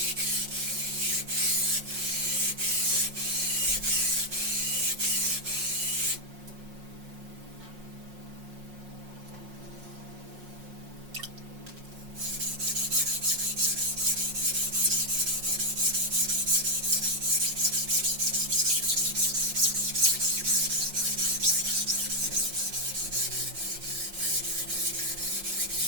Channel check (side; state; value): left; late; 5.5 ms